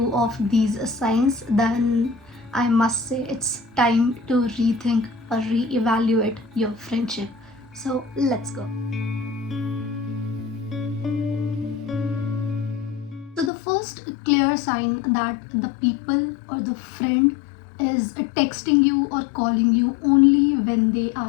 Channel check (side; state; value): right; drops out; at 13.5 s